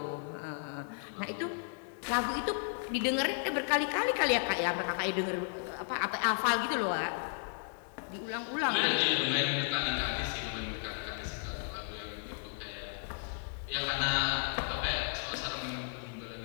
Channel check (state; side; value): silent; right; 55 dB below the other